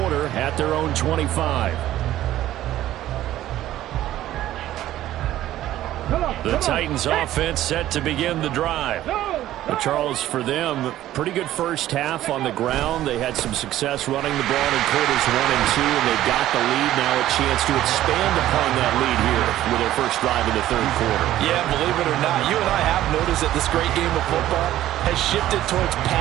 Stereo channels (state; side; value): quieter; left; 13.7 dB